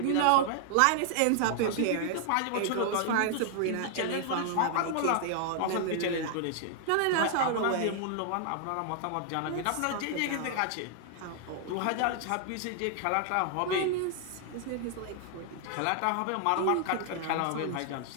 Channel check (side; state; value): both; different; correlation 0.00